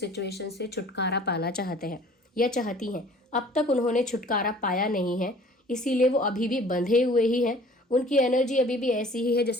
से छुटकारा पाना चाहते हैं या चाहती हैं। अब तक उन्होंने छुटकारा पाया नहीं है, इसीलिए वो अभी भी बंधे हुए ही हैं। उनकी एनर्जी अभी भी ऐसी ही है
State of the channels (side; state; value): both; normal; correlation 0.51